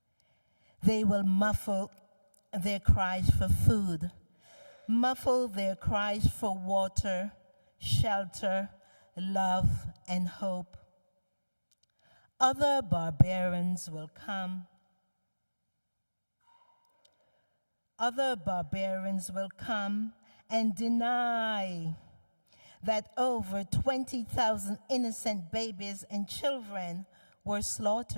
They will muffle their cries for food, muffle their cries for water, shelter, love, and hope. Other barbarians will come. Other barbarians will come and deny that over 20,000 innocent babies and children were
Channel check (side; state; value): both; inverted; correlation -1.00